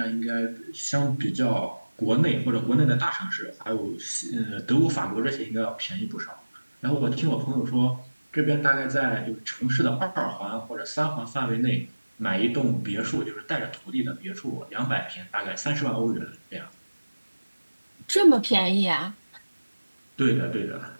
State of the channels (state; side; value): inverted; both; correlation -1.00